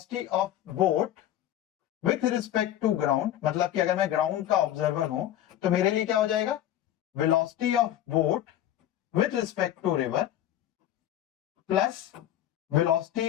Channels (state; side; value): quieter; right; 12.1 dB